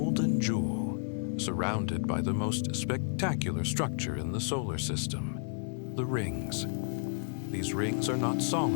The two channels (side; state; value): right; silent; digital silence